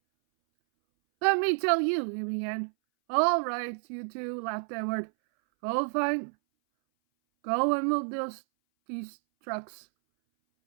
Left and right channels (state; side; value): silent; left; 58 dB below the other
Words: Let me tell you, he began. All right, you two, laughed Edward. Go and move these trucks.